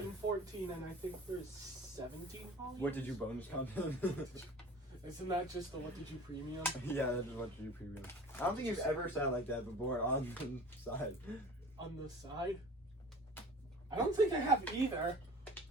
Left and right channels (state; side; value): normal; both; correlation 0.42